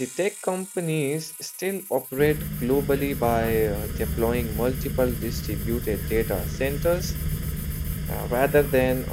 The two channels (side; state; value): both; identical; correlation 1.00